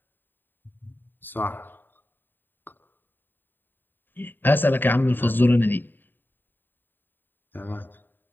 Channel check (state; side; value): late; right; 0.093 ms